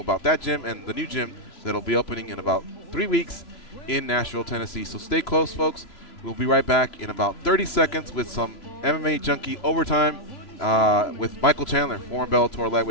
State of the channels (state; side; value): late; right; 3.0 ms